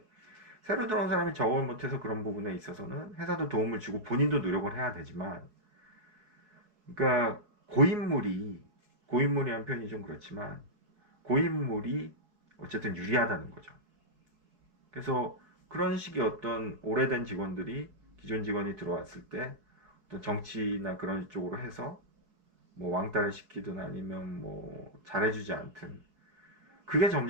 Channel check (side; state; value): left; late; 4.6 ms